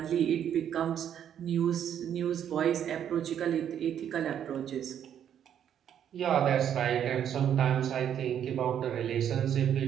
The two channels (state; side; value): quieter; left; 9.5 dB